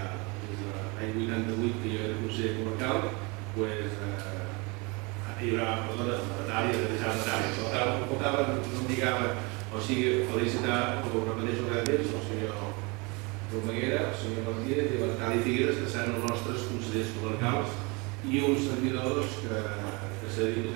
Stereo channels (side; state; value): left; quieter; 28.3 dB